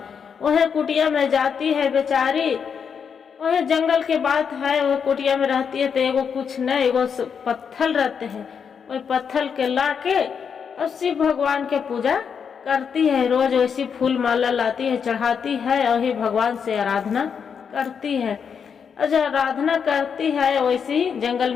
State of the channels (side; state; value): right; quieter; 6.8 dB